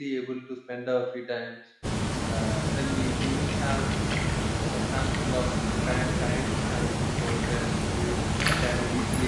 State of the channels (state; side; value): identical; both; correlation 1.00